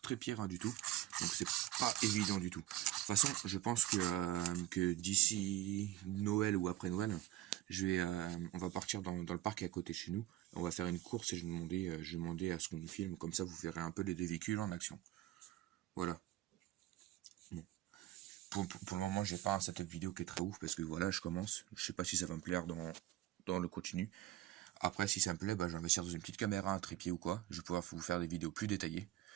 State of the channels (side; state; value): left; quieter; 14.7 dB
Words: très pire rien du tout. Donc c'est pas évident du tout. De toute façon, je pense que d'ici Noël ou après Noël, On va partir dans le parc à côté de chez nous. On va faire une course et je vais demander à ce qu'on nous filme. Comme ça, vous verrez un peu les deux véhicules en action. Voilà. Bon. Pour le moment, j'ai pas un setup vidéo qui est très ouf parce que voilà, je commence. Je sais pas si ça va me plaire dans le continu. Après, si ça me plaît, bah, je vais investir dans une petite caméra, un trépied ou quoi. Je vais pouvoir vous faire des vidéos plus détaillées.